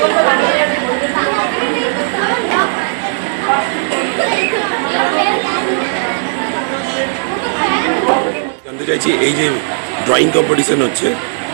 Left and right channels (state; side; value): silent; left; digital silence